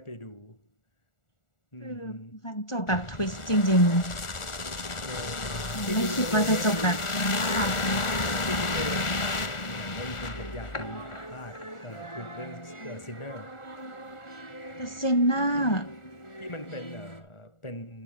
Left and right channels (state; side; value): late; right; 1.4 ms